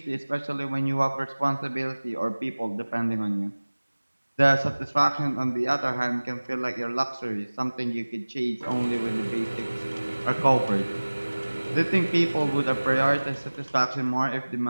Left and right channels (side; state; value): both; inverted; correlation -1.00